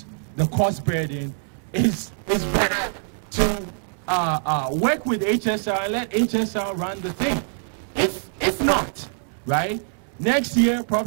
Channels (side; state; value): left; silent; 63 dB below the other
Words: the cost burden, it's better to work with HSR and let HSR run the thing. If not, right, next year